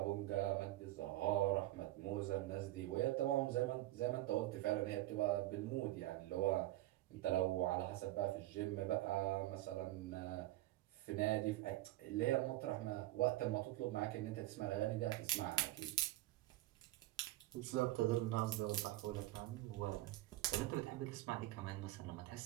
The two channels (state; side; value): quieter; left; 16.3 dB